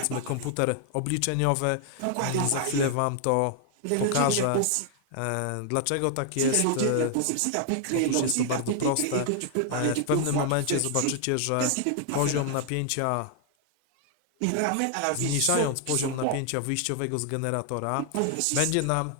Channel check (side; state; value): both; different; correlation 0.00